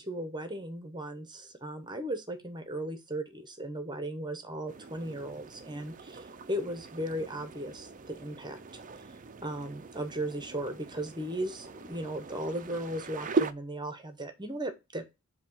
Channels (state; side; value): normal; both; correlation 0.43